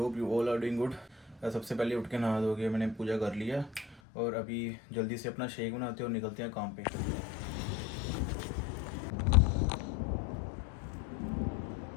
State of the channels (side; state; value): right; drops out; at 4.0 s